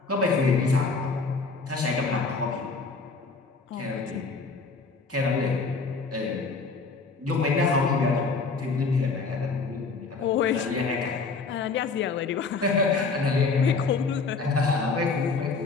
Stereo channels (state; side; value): quieter; right; 4.3 dB